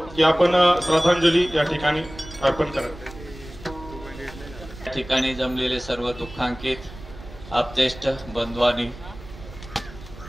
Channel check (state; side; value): noise; right; rumble, 16 dB below the sound